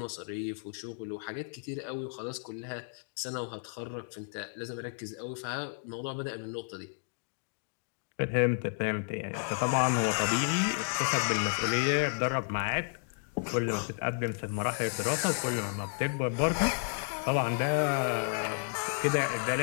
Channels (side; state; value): right; silent; digital silence